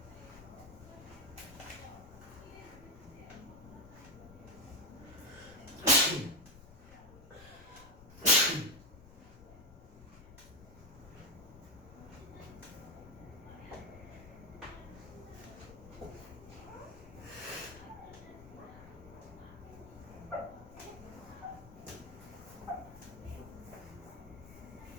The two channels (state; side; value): noise; left; rumble, 19 dB below the sound